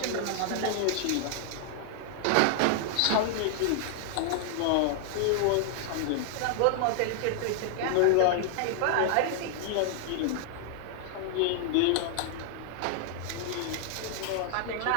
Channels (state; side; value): different; both; correlation 0.00